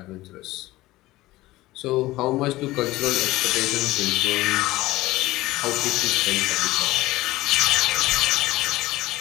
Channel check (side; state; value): right; quieter; 18.0 dB